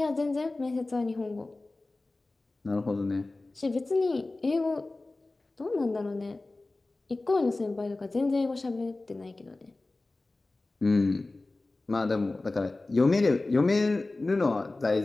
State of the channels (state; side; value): quieter; right; 3.1 dB